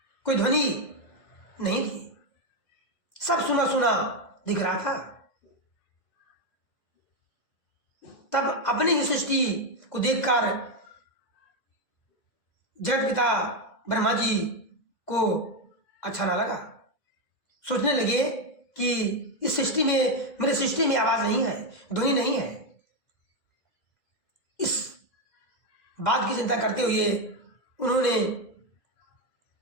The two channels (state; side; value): late; right; 2.0 ms